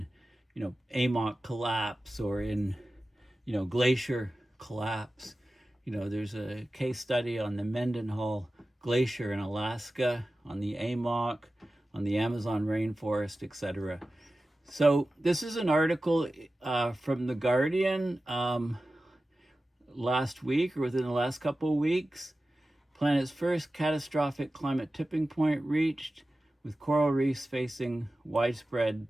AMOC collapse or in, glacier collapse. There's a case study on the Mendenhall Glacier in Alaska, on the AMOC, on the Amazon rainforest, etc. So this is an article from The Guardian last week, or within the last couple of weeks. Planet's first catastrophic climate tipping point reached, with coral reefs facing widespread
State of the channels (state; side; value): normal; both; correlation 0.95